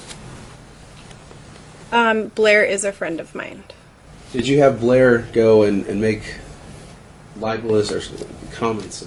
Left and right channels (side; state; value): both; identical; correlation 1.00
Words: Blair is a friend of mine. Did you have Blair go and make libelous or comments